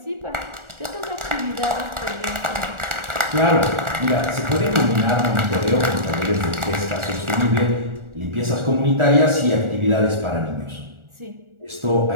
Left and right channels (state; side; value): late; left; 1.4 ms